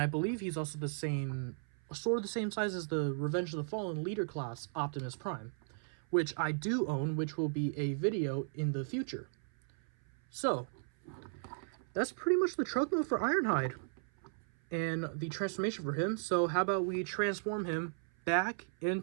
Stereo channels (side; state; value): left; silent; 54 dB below the other